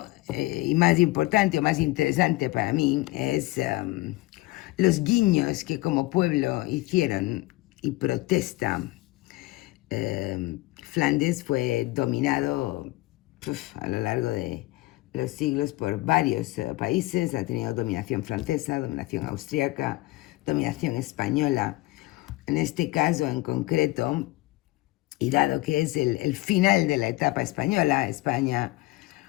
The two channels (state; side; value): quieter; right; 19.9 dB